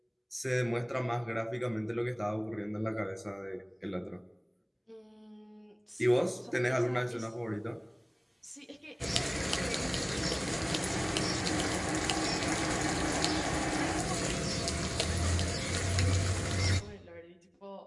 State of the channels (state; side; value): identical; both; correlation 1.00